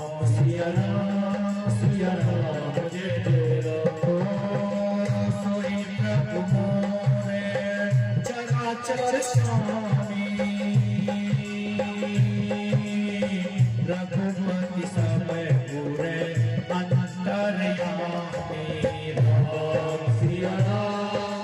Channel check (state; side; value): identical; both; correlation 1.00